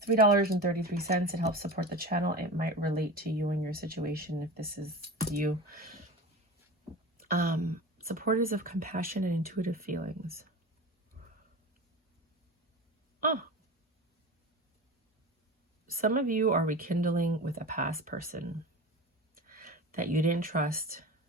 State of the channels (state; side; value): normal; both; correlation 0.31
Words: $3.33. It helps support the channel. It might relate to you and your situation if this is you. Supporters of compassion and intuitive feelings. Oh. Some of you are rekindling with a past person that you didn't trust,